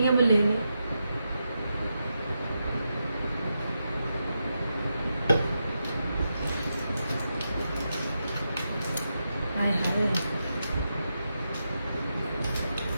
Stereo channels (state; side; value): inverted; both; correlation -0.86